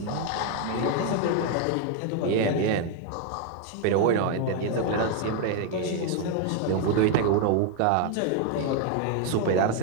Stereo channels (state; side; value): different; both; correlation 0.01